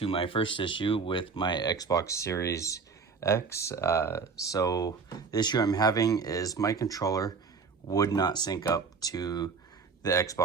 my first issue with my Xbox Series X. So the issue I'm having is my controller would not sync up to the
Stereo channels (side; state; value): left; quieter; 5.1 dB